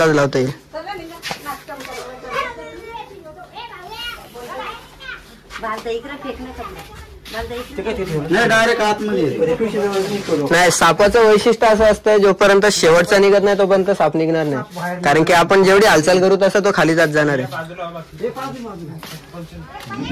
लावता येईल. नाही सापाचं वैशिष्ट्य असं असतं जोपर्यंत शेवटचा निघत नाही तोपर्यंत साप निघणार नाही. कारण की आपण जेवढी हालचाल करू तसं तो खाली जात जाणार आहे.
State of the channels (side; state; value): both; identical; correlation 1.00